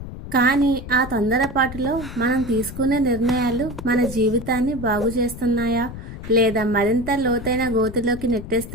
కానీ ఆ తొందరపాటులో మనం తీసుకునే నిర్ణయాలు మన జీవితాన్ని బాగు చేస్తున్నాయా లేదా మరింత లోతైన గోతిలోకి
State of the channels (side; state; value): left; noise; rumble, 11 dB below the sound